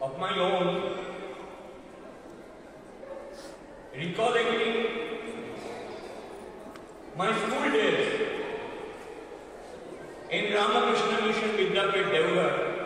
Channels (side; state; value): both; identical; correlation 1.00